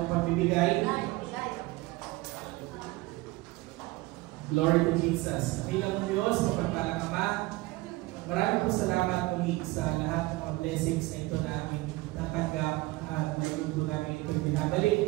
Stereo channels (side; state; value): left; quieter; 20.9 dB